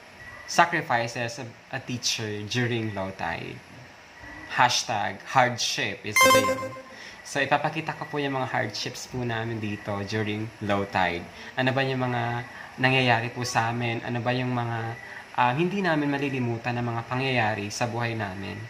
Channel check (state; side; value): identical; both; correlation 1.00